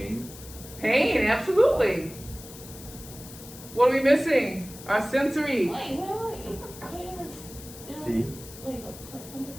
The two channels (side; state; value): left; noise; hiss, 16 dB below the sound